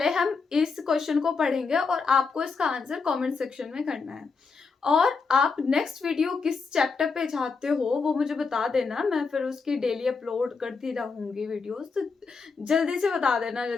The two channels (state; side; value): quieter; right; 4.8 dB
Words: हम इस क्वेश्चन को पढ़ेंगे और आपको इसका आंसर कमेंट सेक्शन में करना है। और आप नेक्स्ट वीडियो किस चैप्टर पे चाहते हो वो मुझे बता देना, मैं फिर उसकी डेली अपलोड करती रहूंगी वीडियोस। तो जल्दी से बता देना,